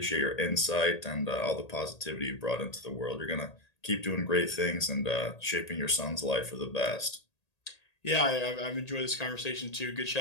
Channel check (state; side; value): late; right; 1.8 ms